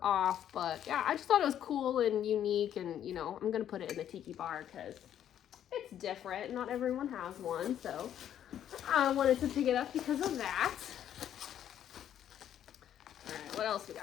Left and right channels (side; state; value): right; quieter; 10.3 dB